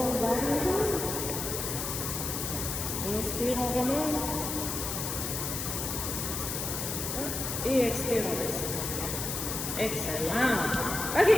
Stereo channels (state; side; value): noise; left; hiss, 3 dB below the sound